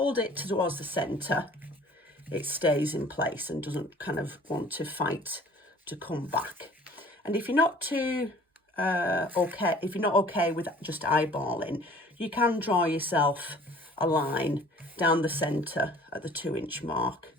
it towards the centre, it stays in place and doesn't kind of want to fight to come back. And if you're not too if you're not okay with just eyeballing, you can draw yourself a line down the centre at the 2-inch mark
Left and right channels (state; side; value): normal; both; correlation 0.51